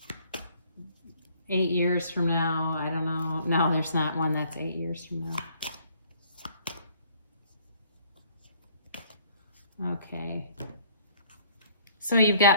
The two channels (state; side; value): inverted; both; correlation -0.59